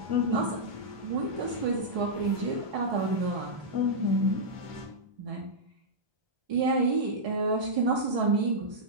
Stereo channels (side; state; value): left; late; 1.2 ms